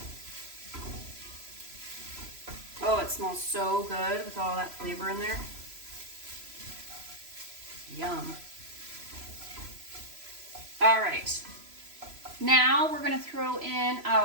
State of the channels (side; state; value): left; late; 3.0 ms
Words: Oh, it smells so good with all that flavor in there. Yum. All right. Now we're going to throw in